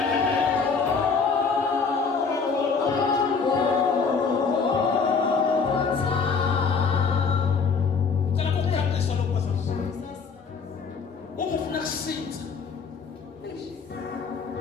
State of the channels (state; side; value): quieter; right; 5.3 dB